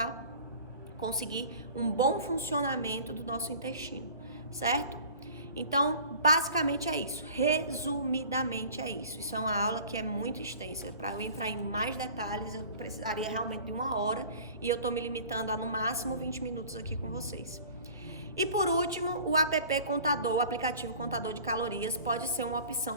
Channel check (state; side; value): inverted; both; correlation -0.45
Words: conseguir um bom funcionamento do nosso intestino, certo? Então, basicamente é isso. Resumidamente é isso. Isso é uma aula que é muito extensa. Para eu entrar em mais detalhes, eu precisaria realmente de 1 hora e eu estou me limitando a no máximo 20 minutos aqui com vocês. E por último, o app Contador, o aplicativo Contador de Calorias, pode ser uma